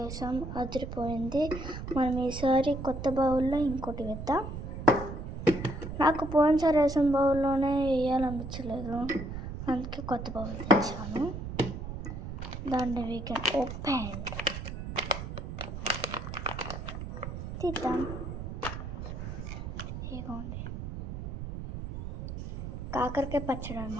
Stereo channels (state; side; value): noise; right; rumble, 7 dB below the sound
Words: అదిరిపోయింది. మనం ఈసారి కొత్త బౌల్లో ఇంకోటి వేద్దాం. నాకు పోయినసారి వేసిన బౌల్లోనే వేయాలనిపించలేదు, అందుకే కొత్త బౌల్ తెచ్చాను. దాన్ని వీ కెన్ ఓపెన్ తీద్దాం. ఇదిగోండి కాకరకాయ పచ్చడి